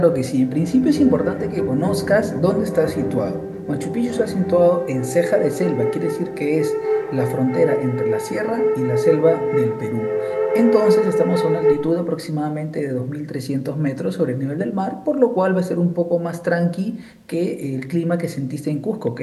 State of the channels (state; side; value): identical; both; correlation 1.00